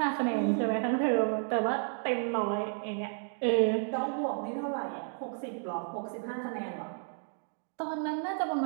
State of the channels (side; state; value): left; silent; 56 dB below the other